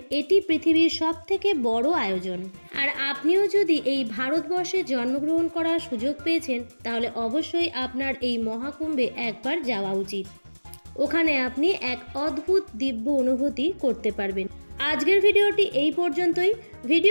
এটি পৃথিবীর সবথেকে বড় আয়োজন। আর আপনিও যদি এই ভারতবর্ষে জন্মগ্রহণ করার সুযোগ পেয়েছেন, তাহলে অবশ্যই আপনার এই মহাকুম্ভে একবার যাওয়া উচিত। ওখানে আপনি এক অদ্ভুত দিব্য অনুভূতি করতে পারবেন। আজকের ভিডিওটি এই পর্যন্তই।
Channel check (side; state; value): both; inverted; correlation -1.00